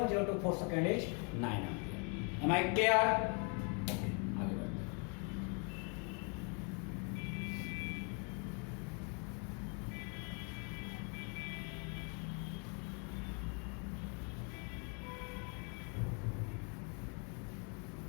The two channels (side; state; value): right; quieter; 37.5 dB